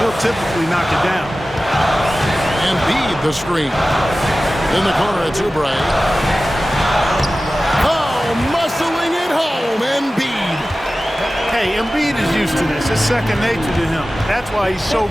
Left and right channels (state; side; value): normal; both; correlation 0.96